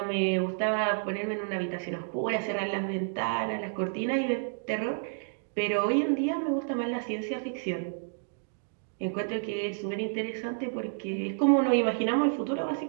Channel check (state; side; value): silent; left; digital silence